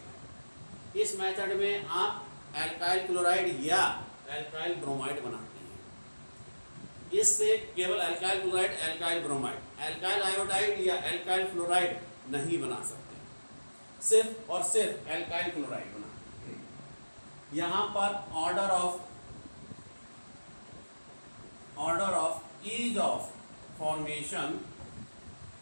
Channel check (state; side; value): inverted; both; correlation -1.00